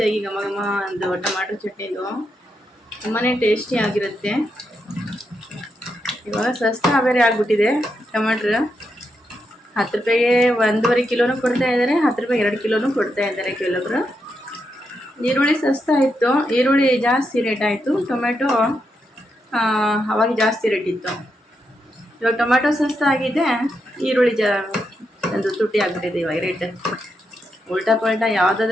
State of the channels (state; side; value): normal; both; correlation 0.83